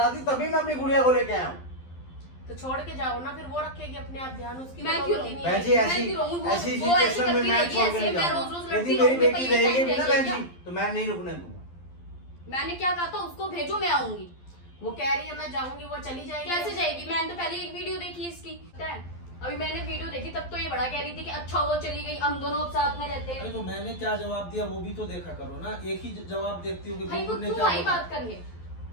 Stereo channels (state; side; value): late; right; 12 ms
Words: थी तभी मैं अपनी गुड़िया को लेके आया हूँ। तो छोड़ के जाओ ना, फिर वो रखेगी अपने आप ध्यान, उसकी मैं तो क्यों नौबत ही नहीं बहन है। जी ऐसी मैं क्यों रहूं? वो ऐसी ऐसी सिचुएशन में करती मैं रहेगी, छोड़ के ऐसे नहीं मैं जाऊंगा। रोज-रोज यदि लड़ती मेरी रहूंगी, बेटी पर ये रहेगी टाइम ना रहेगी बहन जी, क्या? तो मैं नहीं रुकने दूंगा। मैंने क्या कहा था उसको भेजो, मैं आऊंगी। वो कह रही है मैं जाऊंगी, वो चली जाएगी। कैसे जाएगी? मैंने तो पहले एक वीडियो देखी इसकी, पता है? अभी मैंने वीडियो देखी तब तो ये बड़ा कह रही थी कि अच्छा वो चली गई, हम दोनों अब साथ में रहते अरे हैं। तो मैंने क्या जवाब दिया वो भी तो देखा करो ना, एक ही जवाब देखती हूँ कि भाई वो बुलबुल ने क्यों क्या आई बोला। बात करने?